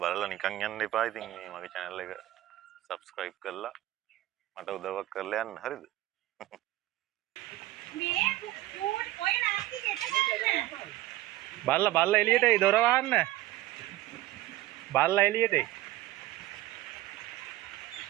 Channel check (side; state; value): left; quieter; 16.0 dB